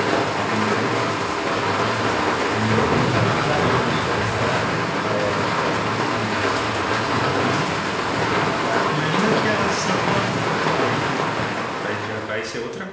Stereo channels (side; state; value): both; identical; correlation 1.00